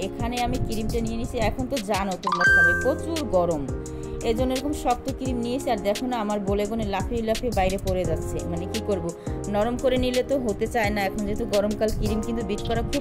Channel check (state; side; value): identical; both; correlation 1.00